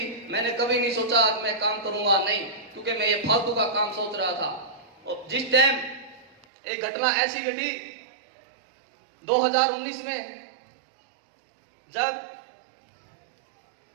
मैंने कभी नहीं सोचा मैं काम करूंगा, नहीं, क्योंकि मैं ये फालतू का काम सोच रहा था। और जिस टाइम एक घटना ऐसी घटी 2019 में, जब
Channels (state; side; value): drops out; left; at 6.4 s